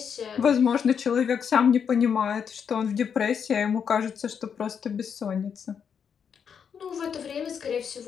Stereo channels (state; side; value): quieter; right; 7.2 dB